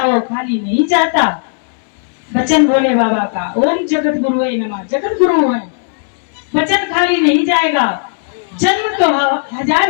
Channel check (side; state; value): right; silent; digital silence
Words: वो खाली नहीं जाता। वचन भोले बाबा का ओम जगत गुरुवे नमः, जगत गुरु है, वचन खाली नहीं जाएगा। जन्म तो